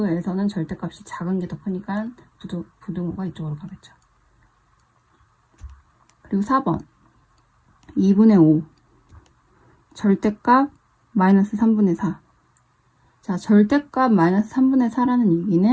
절대값이 작은 게 더 크니까 부등호가 이쪽으로 가겠죠. 그리고 4번 2분의 5 절대값 마이너스 3분의 4. 자, 절대값 마이너스 3분의 4라는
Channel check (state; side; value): identical; both; correlation 1.00